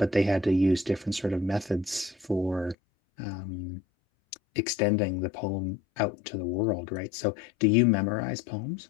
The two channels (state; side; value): drops out; right; at 2.8 s